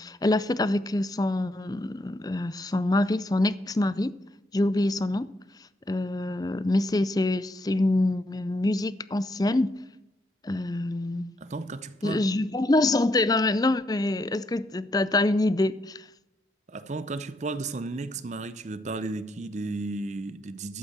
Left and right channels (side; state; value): both; normal; correlation 0.76